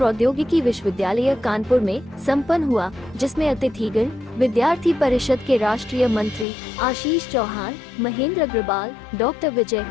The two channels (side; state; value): right; drops out; at 6.5 s